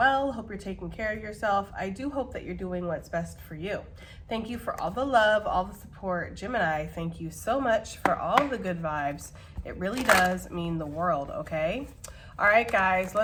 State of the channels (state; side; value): identical; both; correlation 1.00